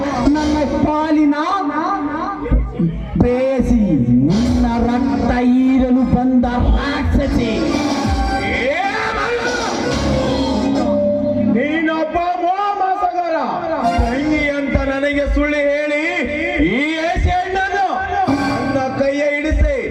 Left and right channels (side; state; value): both; identical; correlation 1.00